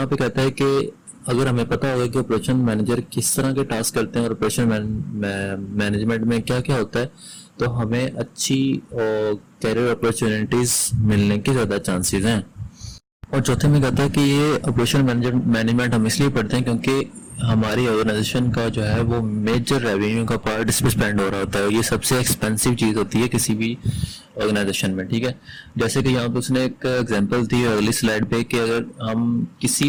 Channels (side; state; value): both; identical; correlation 1.00